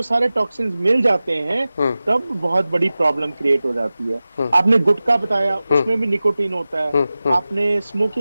सारे टॉक्सिन्स मिल जाते हैं, तब बहुत बड़ी प्रॉब्लम क्रिएट हो जाती है। आपने गुटखा बताया, उसमें भी निकोटीन होता है। आपने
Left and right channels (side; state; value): both; inverted; correlation -0.96